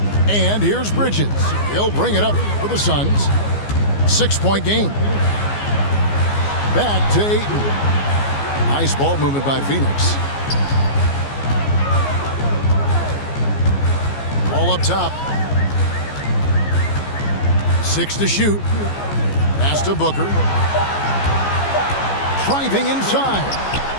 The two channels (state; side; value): late; right; 14 ms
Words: And here's Bridges. He'll bring it up for the Suns. 6-point game. Back to Ayton. Nice ball movement by Phoenix. Ball up top. 6 to shoot. Pass to Booker. Driving inside.